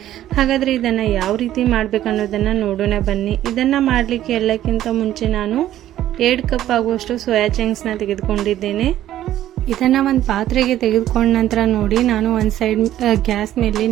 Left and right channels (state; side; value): quieter; left; 12.7 dB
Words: ಹಾಗಾದರೆ ಇದನ್ನು ಯಾವ ರೀತಿ ಮಾಡಬೇಕು ಅನ್ನೋದನ್ನು ನೋಡೋಣ ಬನ್ನಿ. ಇದನ್ನು ಮಾಡಲಿಕ್ಕೆ ಎಲ್ಲಕ್ಕಿಂತ ಮುಂಚೆ ನಾನು 2 ಕಪ್ ಆಗುವಷ್ಟು ಸೋಯಾ ಚಂಕ್ಸ್ನ ತೆಗೆದುಕೊಂಡಿದ್ದೇನೆ. ಇದನ್ನು ಒಂದು ಪಾತ್ರೆಗೆ ತೆಗೆದುಕೊಂಡ ನಂತರ ನೋಡಿ, ನಾನು ಒಂದು ಸೈಡ್ ಗ್ಯಾಸ್ ಮೇಲೆ